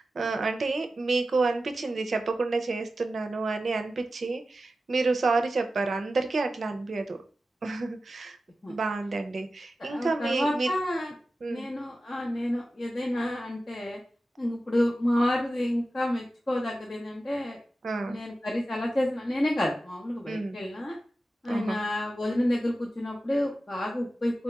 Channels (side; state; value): both; normal; correlation 0.94